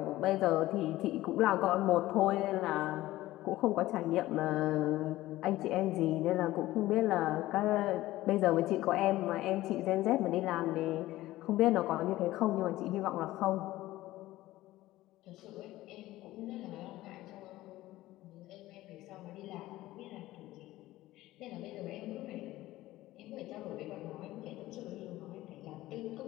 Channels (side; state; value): right; quieter; 16.5 dB